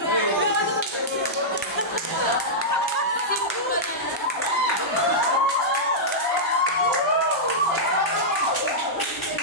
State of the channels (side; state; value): both; normal; correlation -0.10